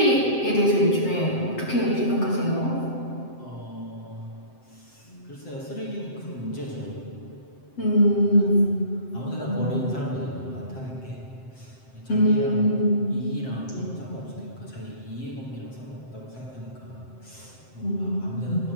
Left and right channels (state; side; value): late; right; 7.7 ms